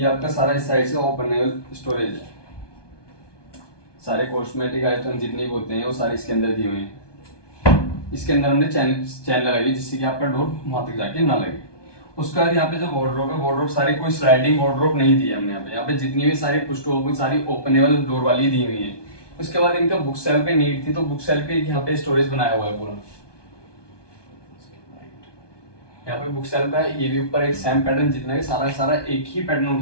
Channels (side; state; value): right; late; 1.2 ms